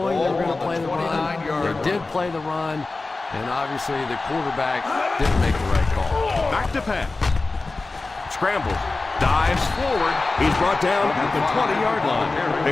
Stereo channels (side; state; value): right; quieter; 3.5 dB